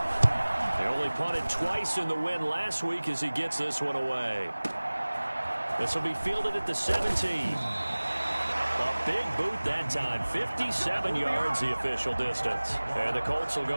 They only punted twice in the win last week as he gets this one away. This will be fielded at the 17. A big boot that time. 57 yards the official distance. And the Colts will go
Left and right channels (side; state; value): both; inverted; correlation -1.00